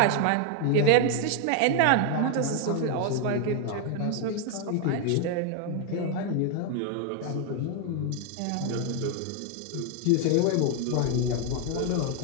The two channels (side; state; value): both; different; correlation 0.01